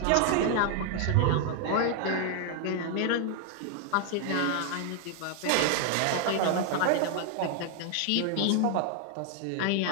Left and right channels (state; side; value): different; both; correlation 0.00